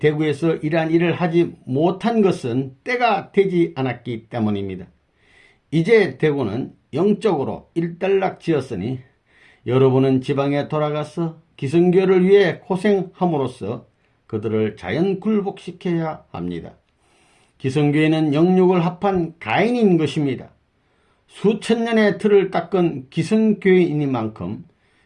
이러한 일을 하지 못한 것은 때가 되지 않았기 때문입니다. 이제 대구는 영적으로 일단락지었으니 여러분은 지방에 돌아가서 기성교를 위해 고생함으로써 그들을 자연 굴복시켜야 합니다. 기성교회는 영육을 합한 가인인 것입니다. 수천 년의 틀을 닦은 기성교회이니만큼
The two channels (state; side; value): identical; both; correlation 1.00